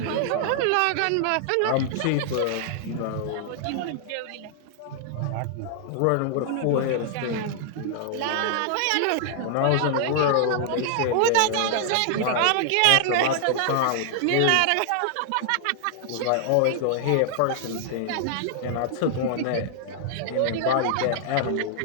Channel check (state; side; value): different; both; correlation -0.01